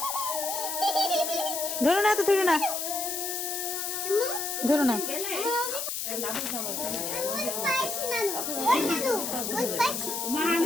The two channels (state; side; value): noise; left; hiss, 3 dB below the sound